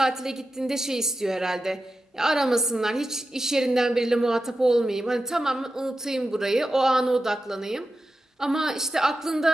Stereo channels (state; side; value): normal; both; correlation 0.91